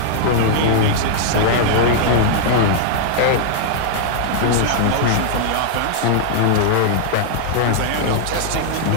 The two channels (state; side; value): different; both; correlation -0.01